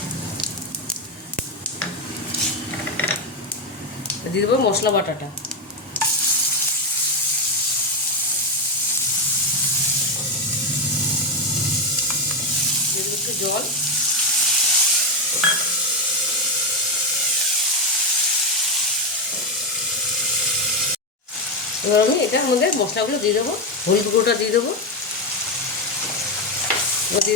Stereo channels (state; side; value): normal; both; correlation 0.09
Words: দিয়ে দেবো মশলা বাটাটা। দিয়ে দেবো একটু জল। এবার আমি এটার মধ্যে মশলাগুলো দিয়ে দেবো। হলুদ গুঁড়োটা দিয়ে দেবো। এবার